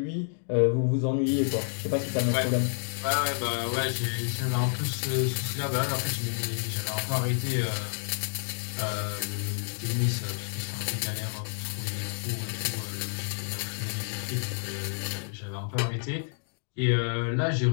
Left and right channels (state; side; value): silent; right; digital silence